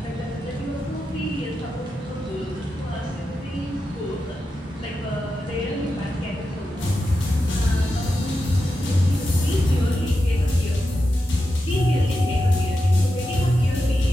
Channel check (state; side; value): normal; both; correlation 0.89